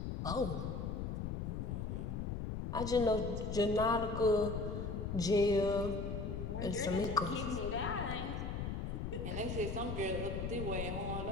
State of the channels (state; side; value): noise; left; rumble, 3 dB below the sound